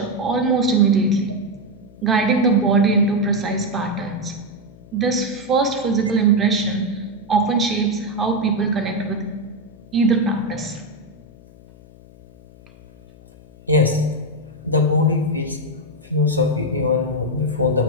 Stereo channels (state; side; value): noise; left; hum, 23 dB below the sound